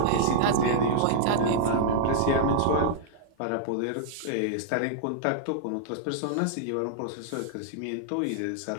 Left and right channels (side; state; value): both; different; correlation -0.01